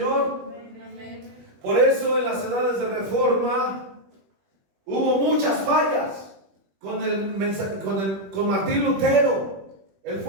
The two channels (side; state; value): left; late; 21 ms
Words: Amén. Por eso en las edades de reforma hubo muchas fallas con Martín Lutero. Él